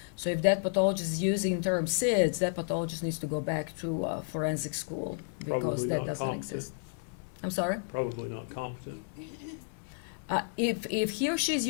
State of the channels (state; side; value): silent; right; 57 dB below the other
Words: So if that pathologist is using the term SIDS, that pathologist needs to go back to forensic school. Probably not competent. Exist. I'm sorry? Probably not competent. If he or she is